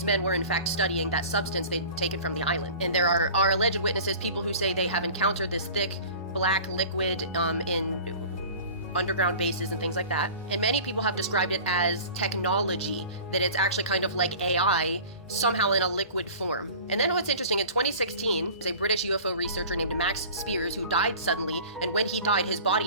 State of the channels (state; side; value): inverted; both; correlation -0.41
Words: men were in fact studying that substance they'd taken from the island. And there are alleged witnesses, people who say they have encountered this thick black liquid in underground bases and things like that. And many people have described it as technology, that it's actually kind of like AI, somehow in a liquid form. And then what's interesting, in 2016, there's a British UFO researcher named Max Spears who died suddenly, and when he died, his